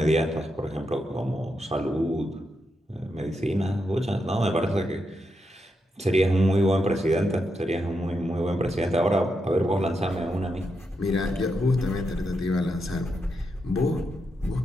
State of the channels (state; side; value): normal; both; correlation 0.84